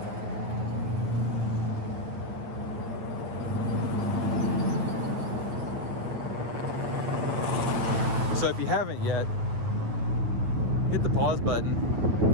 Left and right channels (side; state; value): left; late; 8.9 ms